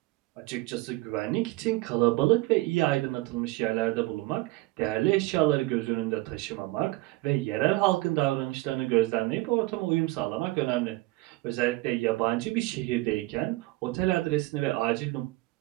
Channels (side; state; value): left; quieter; 20.8 dB